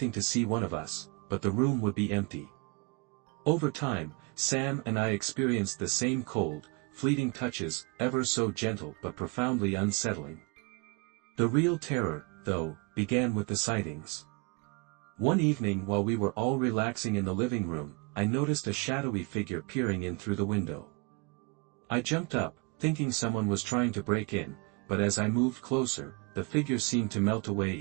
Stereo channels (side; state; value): left; quieter; 29.5 dB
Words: to see one of us, but the room would be empty. Over time, Sam and I experienced the same cold, fleeting touches, ever so gentle but profoundly unsettling. The real terror, though, began with the sightings. One evening while we were all relaxing in the living room, I noticed a shadowy figure peering in through the window. I jumped up, thinking someone was trying to break in, but as I moved closer, the figure seemed to melt